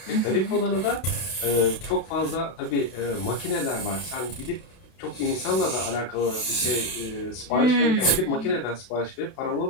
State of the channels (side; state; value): right; late; 32 ms